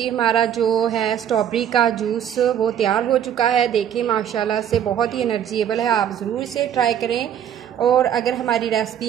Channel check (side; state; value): left; quieter; 9.5 dB